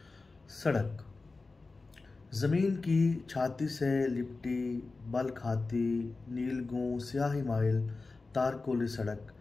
सड़क ज़मीन की छाती से लिपटी बल खाती नीलगूं स्याही माइल तारकोली सड़क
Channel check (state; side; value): quieter; right; 3.7 dB